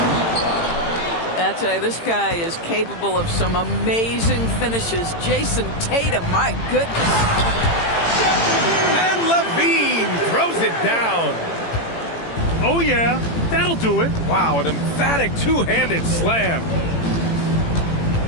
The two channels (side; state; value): right; late; 18 ms